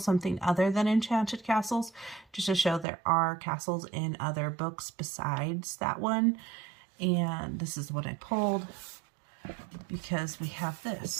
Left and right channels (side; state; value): left; drops out; at 2.9 s